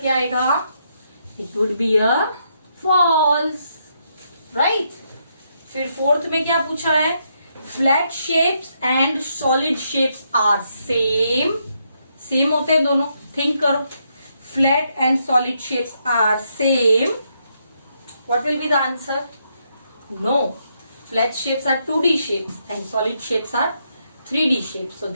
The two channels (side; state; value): both; inverted; correlation -0.77